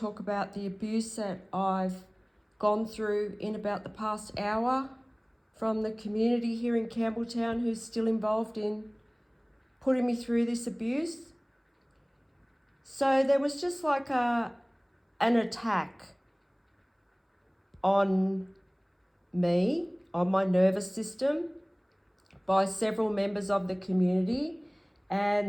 talk about the abuse that I've gone through in about the past hour from the community here in Campbelltown who's still involved in putting me through this abuse. So there was just like an attack on me, on my nervous system, by several members of the community,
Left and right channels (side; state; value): both; identical; correlation 1.00